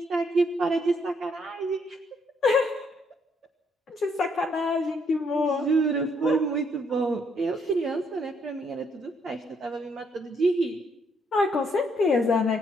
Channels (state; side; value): normal; both; correlation 0.71